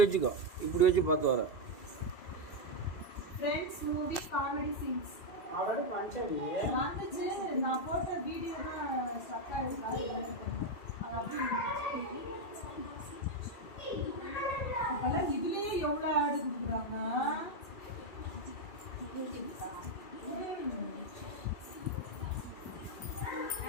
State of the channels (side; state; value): right; late; 2.2 ms